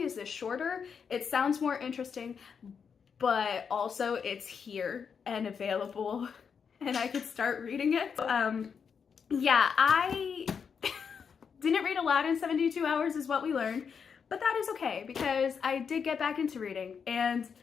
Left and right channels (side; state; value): right; quieter; 6.5 dB